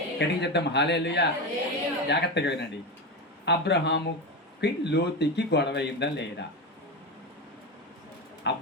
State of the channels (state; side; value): normal; both; correlation 0.18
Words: గట్టిగా చెప్తాం హల్లెలూయా. జాగ్రత్తగా వినండి. అబ్రహాముకి లోతుకి గొడవ అయిందా లేదా?